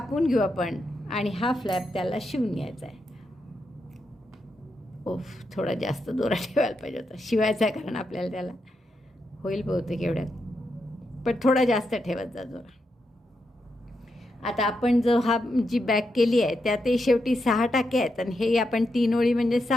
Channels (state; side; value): normal; both; correlation 0.84